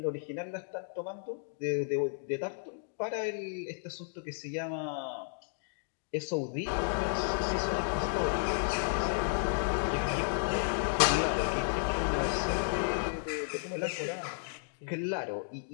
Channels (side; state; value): right; silent; digital silence